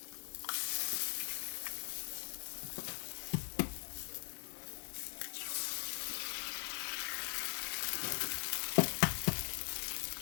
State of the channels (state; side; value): silent; right; 50 dB below the other